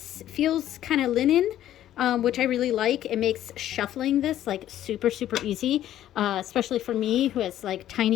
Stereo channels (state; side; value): quieter; right; 12.2 dB